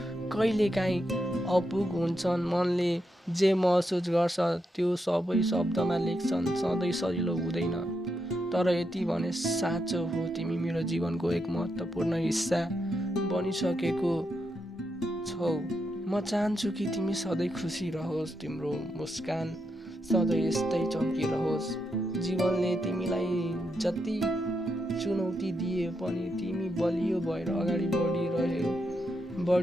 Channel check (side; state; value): both; normal; correlation 0.83